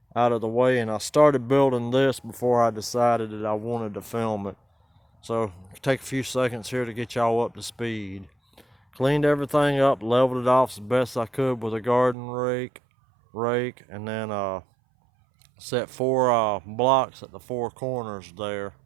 and I started building this before I decided that I wanted to film it. So take a few seconds here to get y'all up to speed. Cleaned everything up, leveled it off as best I could with a garden rake, and then set four blocks at the four corners there.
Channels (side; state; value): left; drops out; at 12.2 s